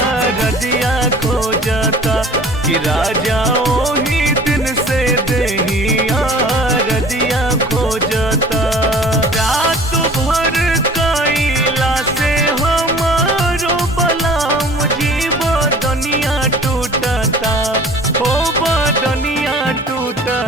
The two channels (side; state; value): both; normal; correlation 0.46